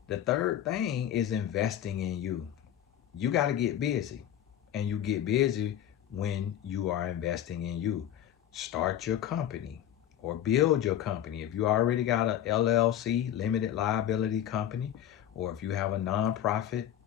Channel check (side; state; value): right; quieter; 10.9 dB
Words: The third thing is investing in you. You gotta get busy, and you get busy when you are investing in you. Start your company or build your company. If you already got a LLC, limited liability company, or if you have a nonprofit